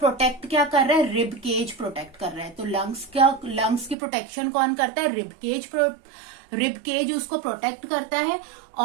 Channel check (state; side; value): drops out; left; at 4.0 s